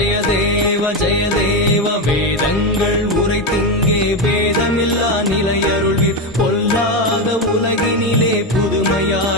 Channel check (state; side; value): normal; both; correlation 0.12